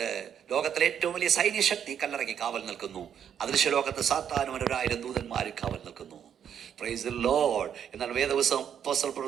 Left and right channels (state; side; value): quieter; left; 8.7 dB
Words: ലോകത്തിലെ ഏറ്റവും വലിയ സൈന്യശക്തി കല്ലറയ്ക്ക് കാവൽ നിൽക്കുന്നു. അദൃശ്യലോകത്ത് സാത്താനും 1000 ദൂതന്മാർ കാവൽ നിൽക്കുന്നു. Price the Lord. എന്നാൽ വേദപുസ്തകം അപ്പോസ്തലൻ